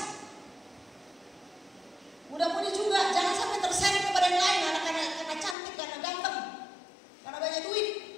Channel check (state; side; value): drops out; right; at 5.6 s